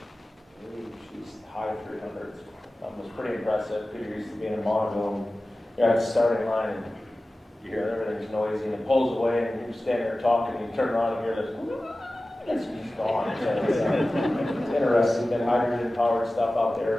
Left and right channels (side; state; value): both; normal; correlation 0.96